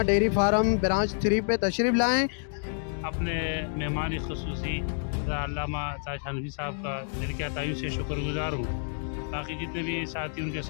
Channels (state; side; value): silent; right; digital silence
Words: डेयरी फार्म ब्रांच 3 पे तशरीफ़ लाएँ। अपने मेहमान खुसूसी अल्लामा ताज हनफी साहब का दिल के अतायु से शुक्रगुजार हूँ। बाकी जितने भी साथी उनके